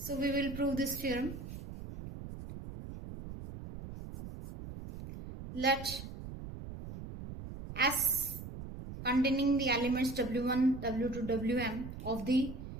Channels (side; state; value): right; noise; rumble, 10 dB below the sound